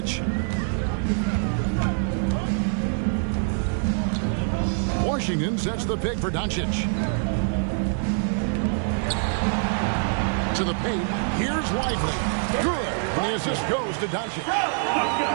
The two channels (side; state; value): left; silent; 62 dB below the other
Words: Washington sets the pick for Doncic. To the paint. Here's Lively. Good. And the assist goes to Doncic. Oh,